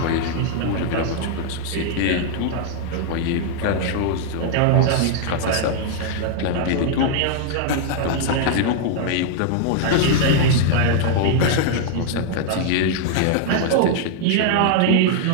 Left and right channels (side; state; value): both; different; correlation 0.00